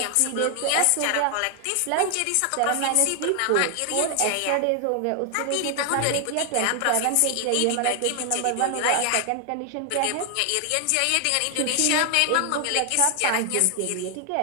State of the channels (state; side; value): different; both; correlation 0.00